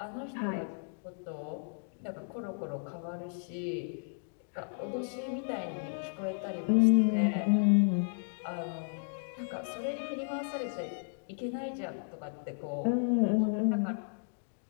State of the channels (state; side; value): silent; right; digital silence